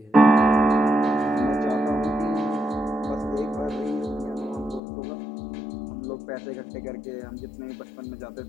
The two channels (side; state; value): right; drops out; at 4.8 s